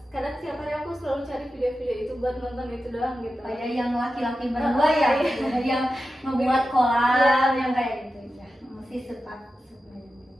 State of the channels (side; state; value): both; normal; correlation 0.92